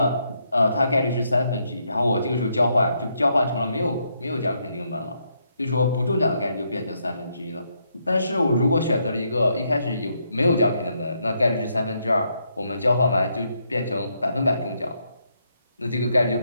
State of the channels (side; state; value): both; inverted; correlation -0.77